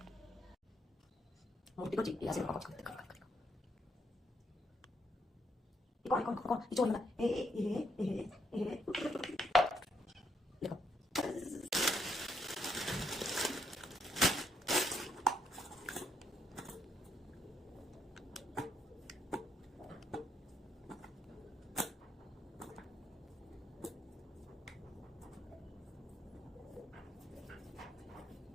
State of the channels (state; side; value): normal; both; correlation 0.75